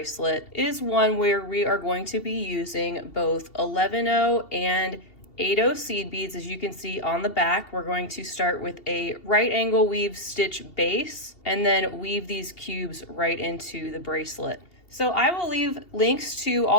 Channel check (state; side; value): late; right; 2.7 ms